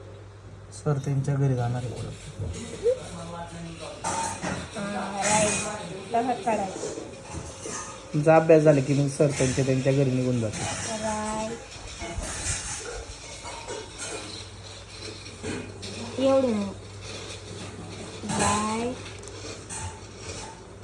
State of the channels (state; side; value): identical; both; correlation 1.00